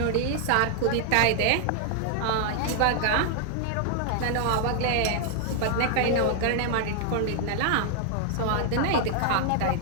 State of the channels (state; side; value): different; both; correlation 0.00